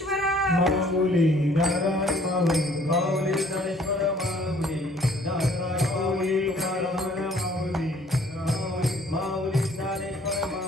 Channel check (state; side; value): normal; both; correlation 0.58